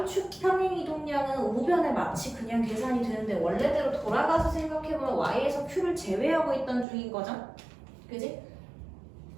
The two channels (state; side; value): drops out; left; at 6.9 s